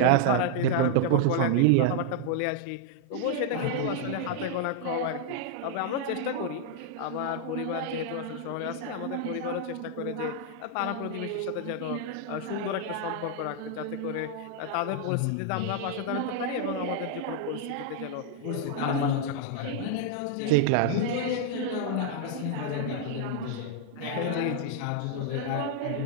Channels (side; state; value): both; different; correlation -0.01